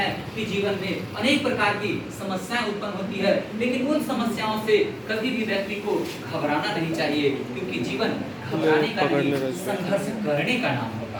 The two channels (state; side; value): identical; both; correlation 1.00